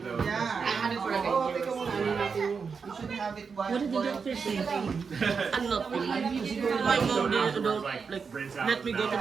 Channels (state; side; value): quieter; left; 5.5 dB